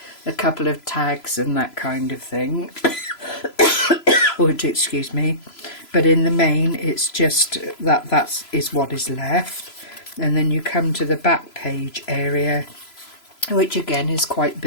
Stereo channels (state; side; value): late; right; 3.0 ms